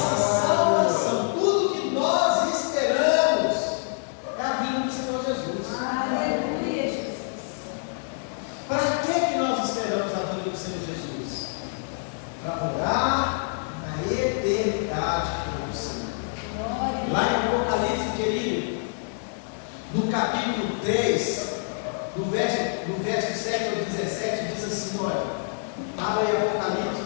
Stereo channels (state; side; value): silent; right; digital silence